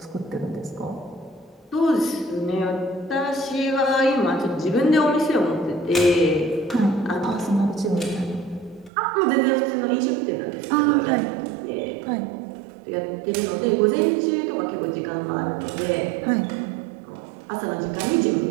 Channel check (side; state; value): left; drops out; at 8.9 s